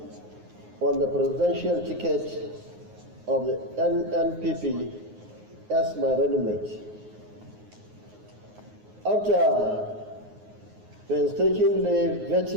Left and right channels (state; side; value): late; left; 9.5 ms